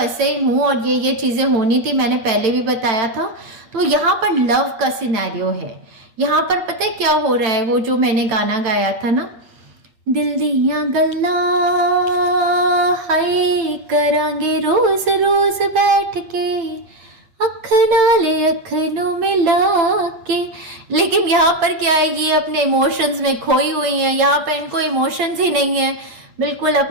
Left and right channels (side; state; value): left; late; 8.9 ms